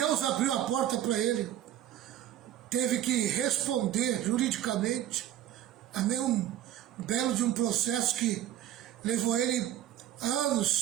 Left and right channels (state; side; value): quieter; left; 11.9 dB